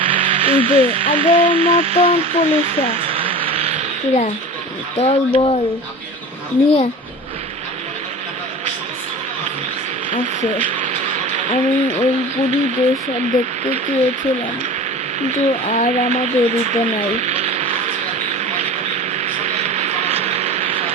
আগের মতন পুলিশরা দল বল নিয়ে আছে। আমি ওই পুরী দেশ দেখতে চেয়েছিলাম, কিন্তু আর আমাদের দিতে নাই।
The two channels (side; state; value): both; normal; correlation 0.35